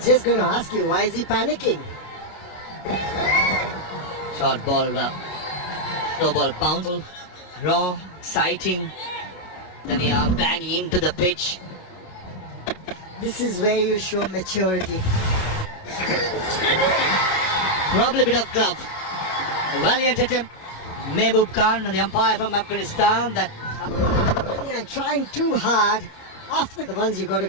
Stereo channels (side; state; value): right; late; 28 ms